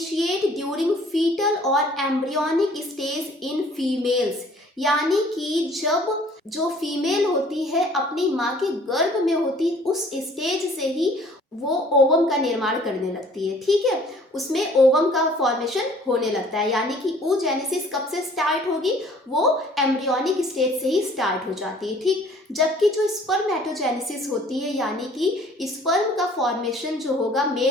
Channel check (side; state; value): both; normal; correlation 0.55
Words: ड्यूरिंग फीटल और एम्ब्रियोनिक स्टेज इन फीमेल्स, यानी कि जब जो फीमेल होती है अपनी माँ के गर्भ में होती उस स्टेज से ही वो ओवम का निर्माण करने लगती है, ठीक है, उसमें ओवम का फॉर्मेशन होने लगता है। यानी कि oogenesis कब से स्टार्ट होगी, वो एम्ब्रियोनिक स्टेज से ही स्टार्ट हो जाती है, ठीक। जबकि जो स्पर्मेटोजेनेसिस होती है, यानी कि स्पर्म का फॉर्मेशन जो होगा